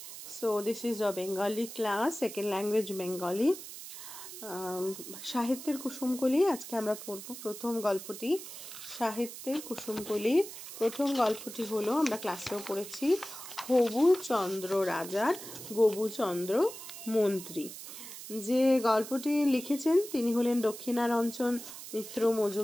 So this is a Bengali class, second language Bengali. সাহিত্যের কুসুমকলি আজকে আমরা পড়ব প্রথম গল্পটি। সাহিত্যের কুসুমকলির প্রথম গল্পটি হলো, আমরা ক্লাসেও পড়েছি, হবুচন্দ্র রাজার গবুচন্দ্র মন্ত্রী। যে গল্পটি লিখেছেন তিনি হলেন দক্ষিণারঞ্জন মিত্র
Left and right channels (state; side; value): noise; right; hiss, 12 dB below the sound